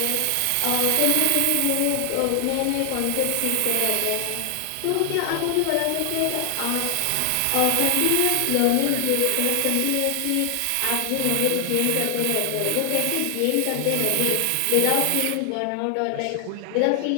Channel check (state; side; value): different; both; correlation 0.00